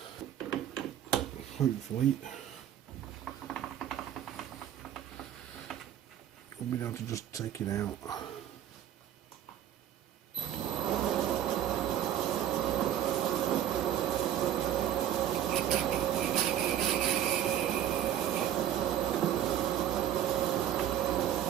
Hopefully I'll be able to just take it out.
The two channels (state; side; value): quieter; left; 10.9 dB